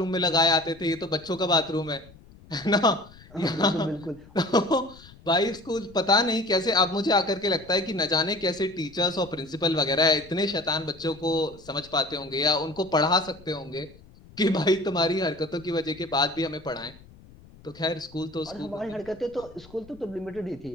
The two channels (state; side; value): noise; left; rumble, 23 dB below the sound